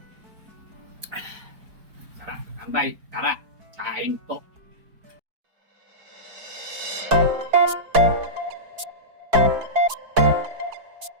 Sarap katambay, tara, kain po.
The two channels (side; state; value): left; late; 4.6 ms